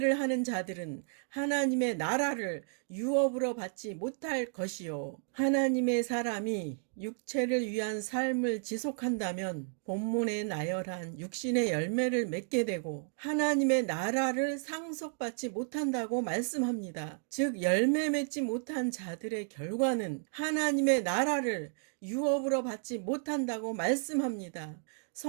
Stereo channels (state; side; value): silent; left; 56 dB below the other